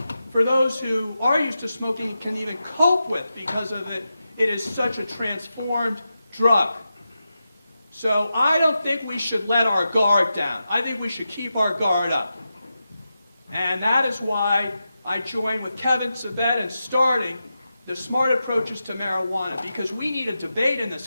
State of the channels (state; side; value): inverted; both; correlation -0.90